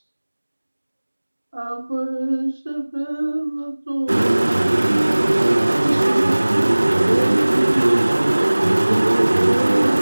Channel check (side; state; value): both; inverted; correlation -1.00